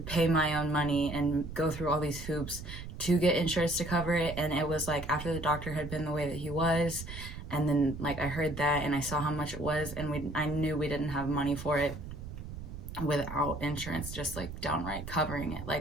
my own money and go through all these hoops to get insurance to cover it. And it was like after the doctor had been the way that he was, and then like I heard that and I saw how much it was, and I knew we didn't have money for it without insurance just like downright covering it.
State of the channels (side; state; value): right; noise; rumble, 10 dB below the sound